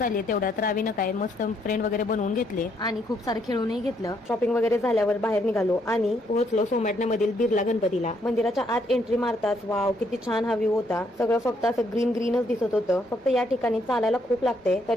तेवढ्यात रावीनं काय मस्त फ्रेंड वगैरे बनवून घेतले आणि खूप सारे खेळूनही घेतलं. शॉपिंग वगैरे झाल्यावर बाहेर निघालो आणि पोहोचलो सोमॅटण्यामधील बिर्ला गणपतीला. मंदिराच्या आत एंट्री मारताच वाव किती छान हा व्ह्यू होता. सगळं फक्त असं ग्रीन ग्रीनच दिसत होतं. फक्त या ठिकाणी चालायला खूप लागते.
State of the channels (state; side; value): normal; both; correlation 0.72